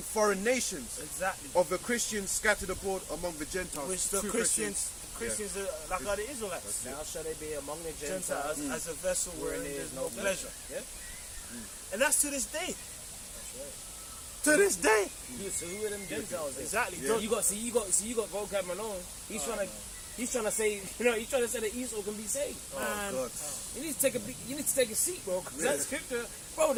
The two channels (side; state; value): both; identical; correlation 1.00